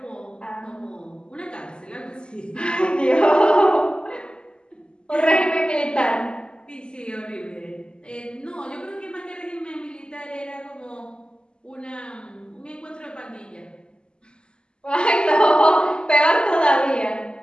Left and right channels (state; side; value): late; right; 0.049 ms